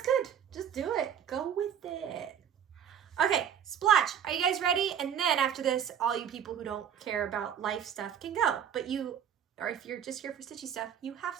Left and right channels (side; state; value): left; quieter; 8.8 dB